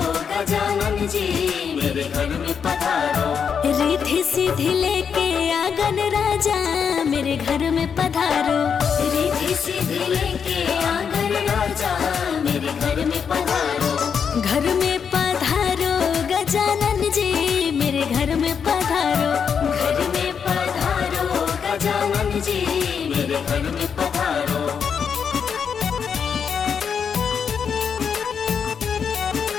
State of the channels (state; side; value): quieter; right; 6.9 dB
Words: गजानन जी मेरे घर में पधारो। रिद्धि सिद्धि लेके आंगन राजा मेरे घर में पधारो। रिद्धि सिद्धि लेके आंगन राजा मेरे घर में पधारो। घर में पधारो गजानन जी मेरे घर में पधारो। घर में पधारो गजानन जी मेरे घर में पधारो।